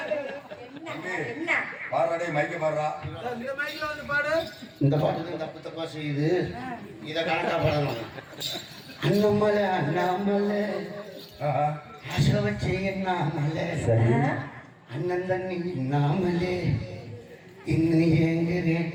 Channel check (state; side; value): identical; both; correlation 1.00